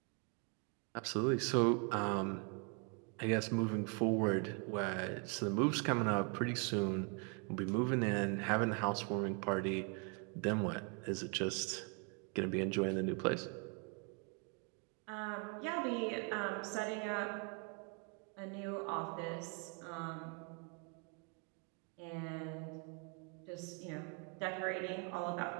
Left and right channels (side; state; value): left; quieter; 35.1 dB